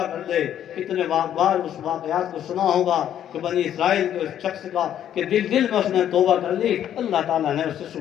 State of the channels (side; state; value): right; quieter; 10.4 dB